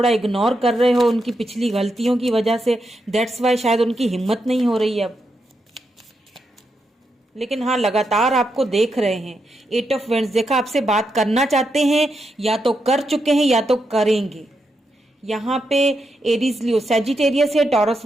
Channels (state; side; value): normal; both; correlation 0.84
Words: इग्नोर कर रहे हो उनकी पिछली गलतियों की वजह से। दैट्स वाई शायद उनकी हिम्मत नहीं हो रही है अब, लेकिन हाँ लगातार आपको देख रहे हैं। 8 ऑफ वेंड्स, देखा आपसे बात करना चाहते हैं, या तो कर चुके हैं या तो करेंगे। यहाँ पे एरीज, लियो, सैजिटेरियस है, taurus,